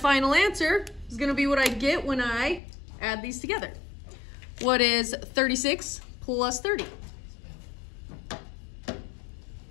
answer is going to be what I get when I add these together. What is 36 plus 30?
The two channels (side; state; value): right; drops out; at 2.6 s